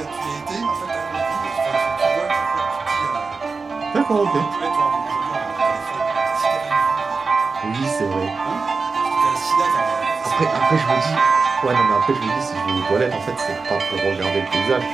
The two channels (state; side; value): quieter; left; 4.4 dB